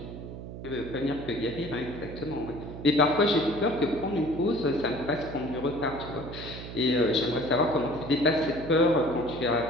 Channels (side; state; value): right; noise; hum, 10 dB below the sound